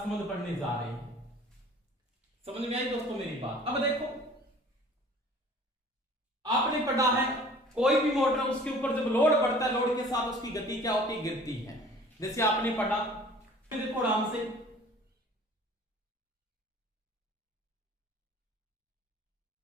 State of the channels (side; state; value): both; normal; correlation 0.48